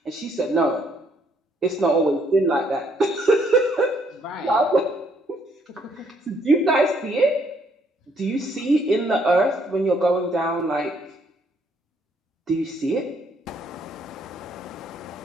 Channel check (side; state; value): both; normal; correlation 0.68